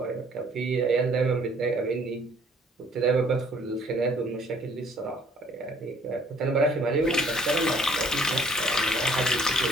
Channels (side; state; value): both; normal; correlation 0.59